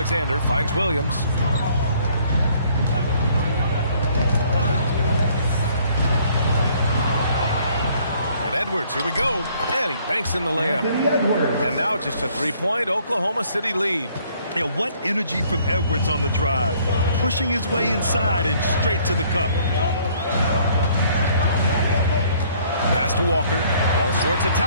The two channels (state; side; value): inverted; both; correlation -0.61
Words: finds Williams. And Edwards, here we go. And he banks in the layup. Anthony Edwards. And now just a 3-point Oklahoma City lead. Yeah, what energy from Edwards on the drive. Pushing his way inside and straight to the cup. Pass to Walker. All sorts of